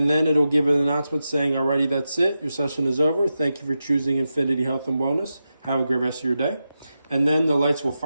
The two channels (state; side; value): inverted; both; correlation -0.90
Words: then it'll give an announcement saying, alrighty, that's it. Your session is over. Thank you for choosing Infinity Health and Wellness. Have a great rest of your day. And then the lights will